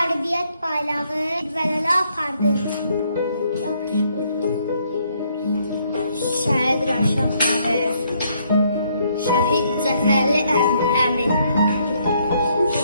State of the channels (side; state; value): both; inverted; correlation -0.70